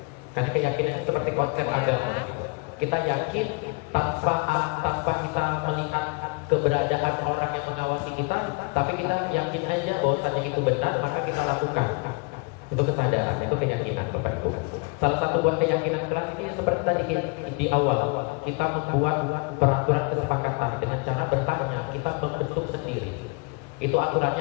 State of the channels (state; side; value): quieter; right; 30.3 dB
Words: Karena keyakinan itu seperti konsep agama gitu. Kita yakin tanpa kita melihat keberadaan orang yang mengawasi kita, tapi kita yakin aja bahwasanya itu benar, maka kita lakukan. Itu kesadaran, itu keyakinan Bapak Ibu. Salah satu buat keyakinan kelas ini seperti tadi di awal, kita membuat peraturan kesepakatan dengan cara bertanya, kita membentuk sendiri. Itu aturannya